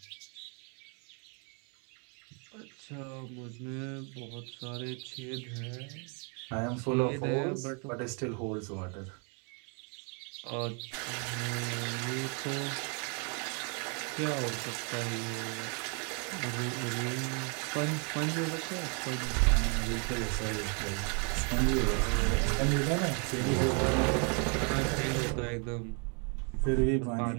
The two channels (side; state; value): left; quieter; 37.3 dB